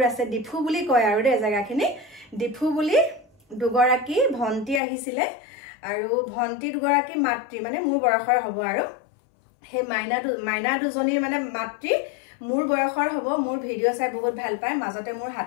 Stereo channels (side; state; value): right; drops out; at 4.8 s